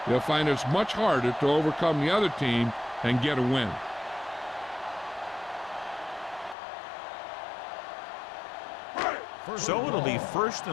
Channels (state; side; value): drops out; right; at 6.6 s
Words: they'll find it's much harder to overcome the other team and get a win. So it'll be first